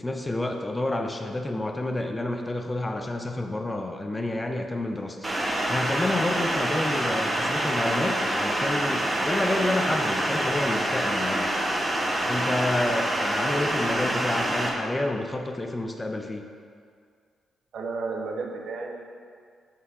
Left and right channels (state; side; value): normal; both; correlation 0.88